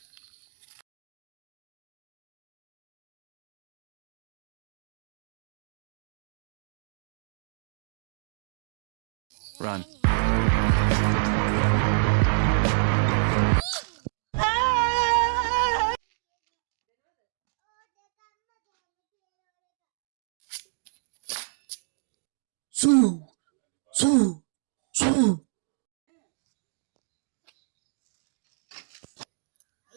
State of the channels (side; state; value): left; silent; digital silence